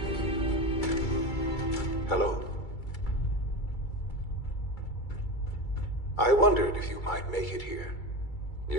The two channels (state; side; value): late; right; 2.3 ms